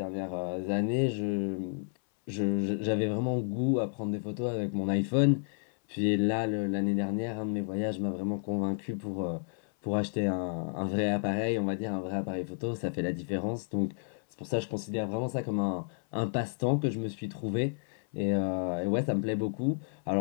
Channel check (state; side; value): silent; right; 57 dB below the other